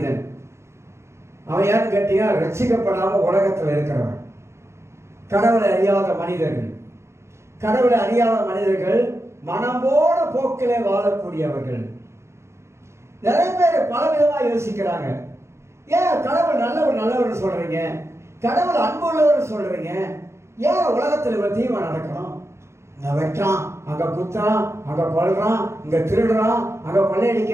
அவன் யாருன்னு கேட்டீங்கன்னா ரட்சிக்கப்படாம உலகத்தில் இருக்கிறவன். கடவுளை அறியாத மனிதர்கள். கடவுளை அறியாத மனிதர்கள் மனம்போட போக்கிலே வாழக்கூடியவர்கள். நிறைய பேர் பல விதமா யோசிக்கிறாங்க. ஏன் கடவுள் நல்லவர் சொல்றீங்க, கடவுள் அன்புள்ளவர் சொல்றீங்க, ஏன் உலகத்தில் இவ்வளவு தீமை நடக்கணும்? இங்க வெட்டான், அங்க குத்துறான், அங்க கொல்றான், இங்க திருடுறான், அங்க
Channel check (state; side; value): late; left; 0.13 ms